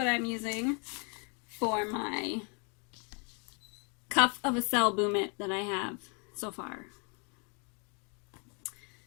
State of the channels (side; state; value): right; quieter; 35.8 dB